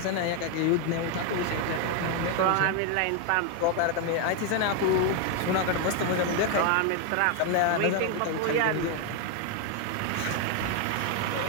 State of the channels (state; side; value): different; both; correlation 0.01